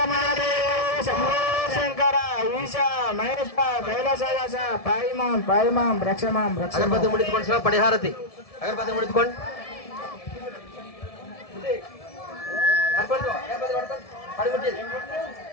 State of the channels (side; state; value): right; late; 1.7 ms